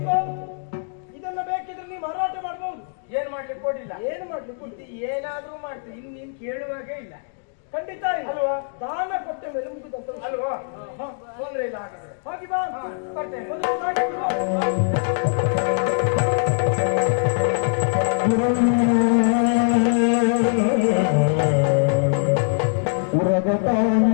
ಇದನ್ನ ಬೇಕಿದ್ರೆ ನೀ ಮಾರಾಟ ಮಾಡಬಹುದು. ಏನ್ ಮಾಡ್ಲಿಕ್ಕೆ ಕೊಡಿಲ್ಲ. ಏನು ಮಾಡ್ಲಿಕ್ಕೆ ಇದು ಏನಾದ್ರೂ ಮಾಡ್ತೀನಿ, ಇನ್ನು ನೀನ್ ಕೇಳುವಾಗೆ ಇಲ್ಲ. ಖಂಡಿತ ಅಲ್ವಾ? ದಾನ ಕೊಟ್ಟ ಮೇಲೆ ಮುಗಿದಂತ ಅಲ್ವಾ? ತೊಂದ್ರೆ ಇಲ್ಲ. ಹಾಗಾದ್ರೆ ಹೋಗಿ ಬಾ. ಕೊಡ್ತೇನೆ.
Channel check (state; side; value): silent; right; digital silence